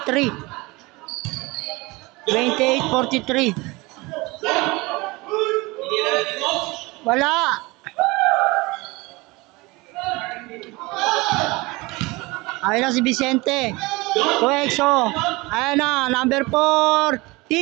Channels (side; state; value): left; quieter; 23.5 dB